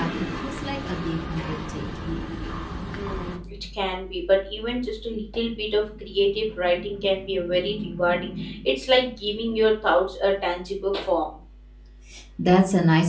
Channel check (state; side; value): identical; both; correlation 1.00